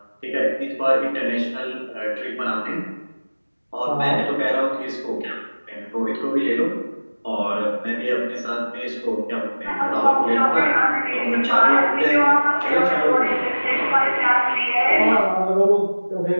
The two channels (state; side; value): inverted; both; correlation -1.00